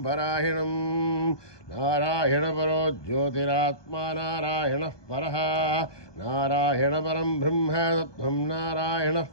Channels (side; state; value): right; late; 1.2 ms